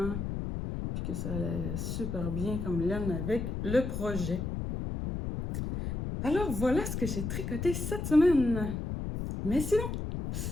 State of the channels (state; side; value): noise; left; rumble, 4 dB below the sound